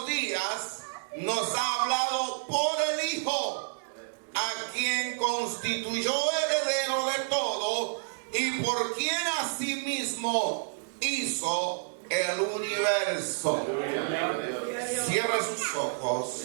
días nos ha hablado por el Hijo, a quien constituyó heredero de todo y por quien asimismo hizo el universo. Cierra sus ojos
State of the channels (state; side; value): silent; left; digital silence